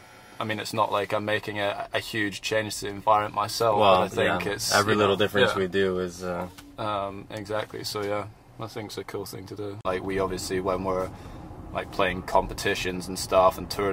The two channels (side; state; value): both; identical; correlation 1.00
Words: I mean, it's not like I'm making a huge change to the environment myself. Well, but I think it's every little difference we do is. Exactly. So yeah, I think it's a cool thing to do. Like we obviously, when we're like playing competitions and stuff and